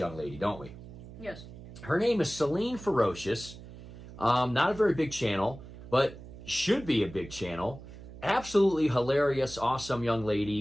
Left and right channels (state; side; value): noise; right; hum, 15 dB below the sound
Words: lady, don't we? Yes. Her name is Celine Ferocious. Not a very big channel, but should be a big channel. Absolutely hilarious, awesome young